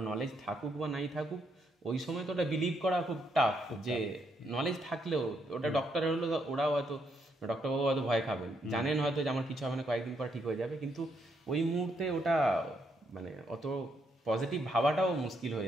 নলেজ থাকুক বা নাই থাকুক ওই সময় তো ওটা বিলিভ করা খুব টাফ, যে নলেজ থাকলেও ওটা ডক্টর হলো ওরাও হয়তো ডক্টরবাবু হয়তো ভয় খাবেন, জানেন হয়তো যে আমার কিছু হবে না, কয়েকদিন পর ঠিক হয়ে যাবে, কিন্তু ওই মুহূর্তে ওটা মানে অত পজিটিভ ভাবাটাও মুশকিল হয়ে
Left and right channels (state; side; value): normal; both; correlation 0.76